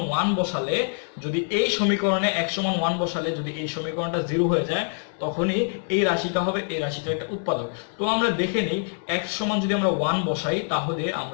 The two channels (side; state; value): right; silent; 58 dB below the other